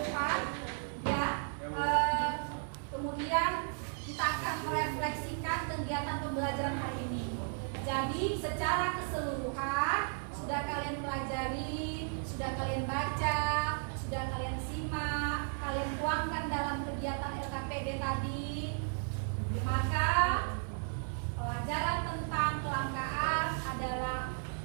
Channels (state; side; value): silent; left; 55 dB below the other